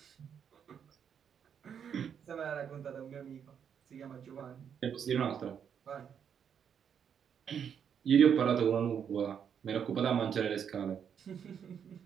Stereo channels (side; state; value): left; quieter; 7.9 dB